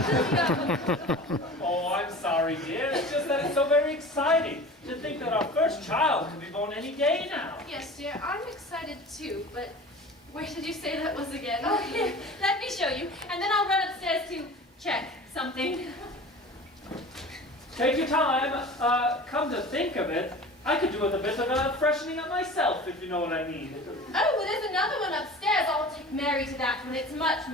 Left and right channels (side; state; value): both; normal; correlation 0.38